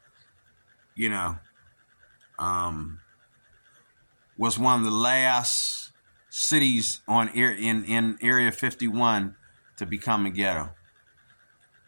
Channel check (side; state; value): both; inverted; correlation -1.00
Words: was one of the last cities in Area 51 to become a ghetto.